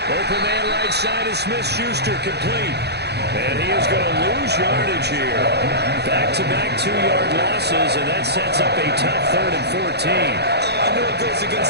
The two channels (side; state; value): left; late; 0.48 ms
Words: Open man right side is Smith-Schuster, complete. And he is going to lose yardage here. Back-to-back 2-yard losses, and that sets up a tough 3rd and 14. I know it goes